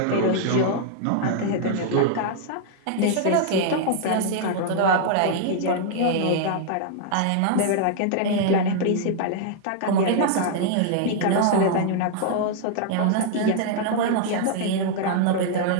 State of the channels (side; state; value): both; different; correlation -0.01